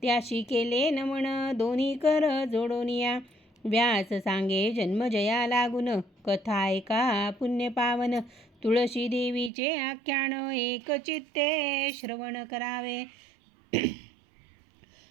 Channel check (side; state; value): left; drops out; at 9.5 s